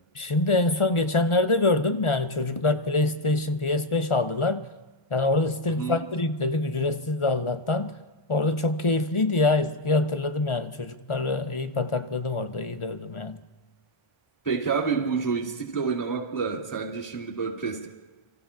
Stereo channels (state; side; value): late; right; 1.4 ms